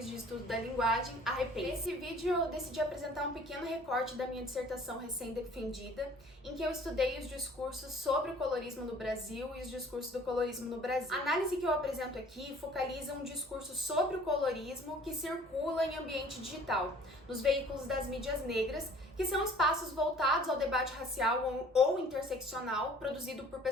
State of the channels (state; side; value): normal; both; correlation 0.52